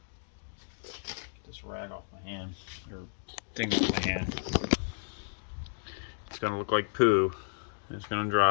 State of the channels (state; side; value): silent; right; digital silence